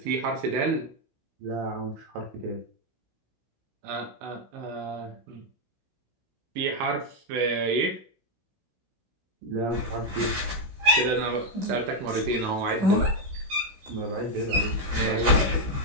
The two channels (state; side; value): late; left; 16 ms